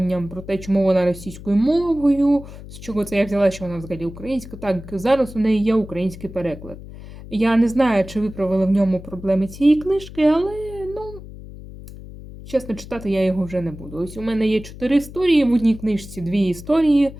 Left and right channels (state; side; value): noise; left; hum, 15 dB below the sound